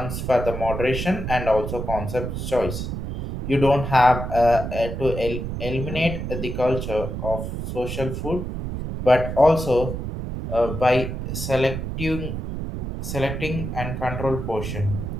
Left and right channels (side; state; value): right; noise; rumble, 5 dB below the sound